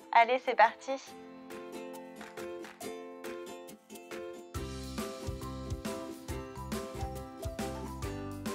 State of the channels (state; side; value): identical; both; correlation 1.00